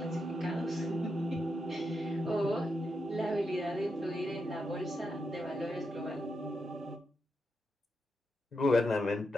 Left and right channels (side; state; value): both; normal; correlation 0.85